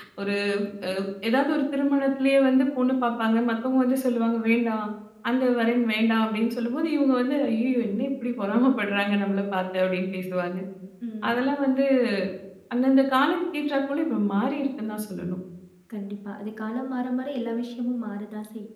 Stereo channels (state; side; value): identical; both; correlation 1.00